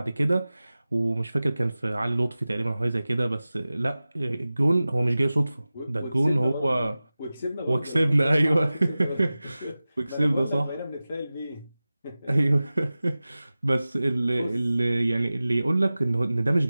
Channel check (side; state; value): both; inverted; correlation -0.97